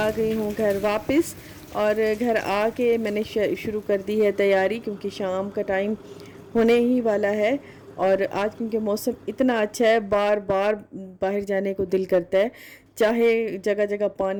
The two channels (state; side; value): identical; both; correlation 1.00